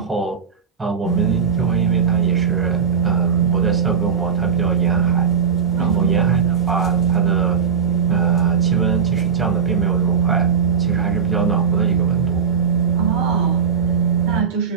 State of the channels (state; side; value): quieter; left; 6.6 dB